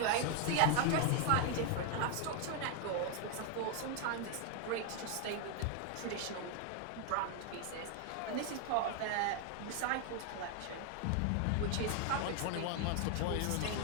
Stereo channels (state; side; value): different; both; correlation 0.00